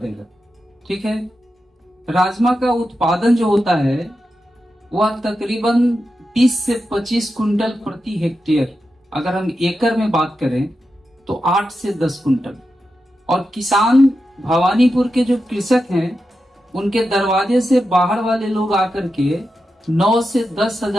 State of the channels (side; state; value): both; normal; correlation 0.89